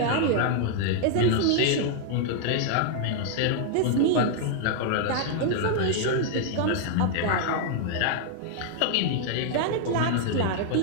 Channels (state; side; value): different; both; correlation 0.00